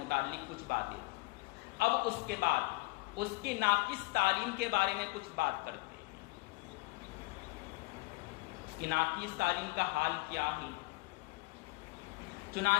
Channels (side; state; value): right; quieter; 25.0 dB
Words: کچھ باتیں تھیں۔ اب اس کے بعد اس کی ناقص تعلیم کے بارے میں کچھ بات کرتے ہیں۔ اس کی ناقص تعلیم کا حال کیا ہے؟